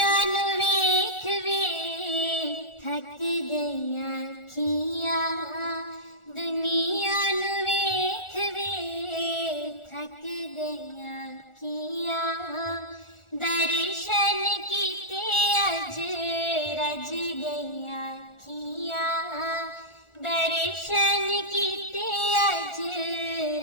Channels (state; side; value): late; right; 1.4 ms